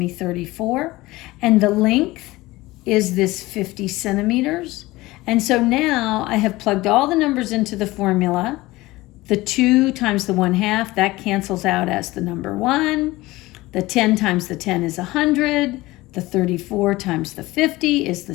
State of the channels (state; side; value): quieter; right; 19.4 dB